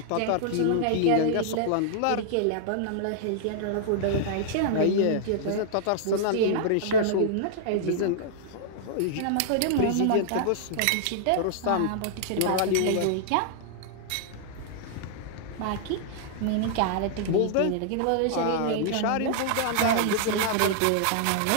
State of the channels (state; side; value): different; both; correlation -0.01